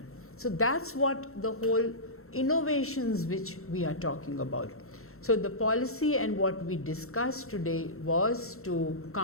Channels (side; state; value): right; late; 0.63 ms